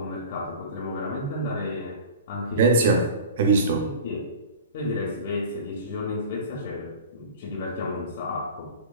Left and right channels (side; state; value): both; inverted; correlation -0.36